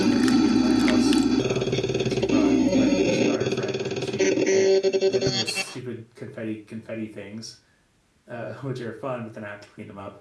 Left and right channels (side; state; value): both; identical; correlation 1.00